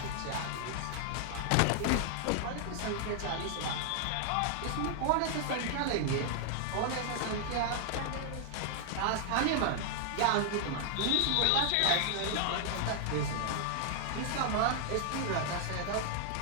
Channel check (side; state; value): both; different; correlation 0.00